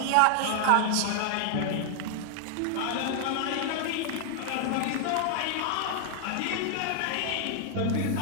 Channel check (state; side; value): different; both; correlation 0.00